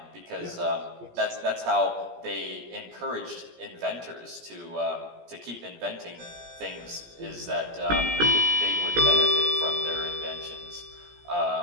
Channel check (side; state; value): left; late; 17 ms